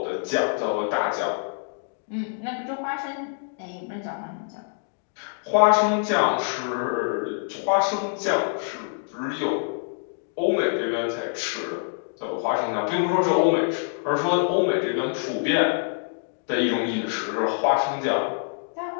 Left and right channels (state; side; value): silent; right; 58 dB below the other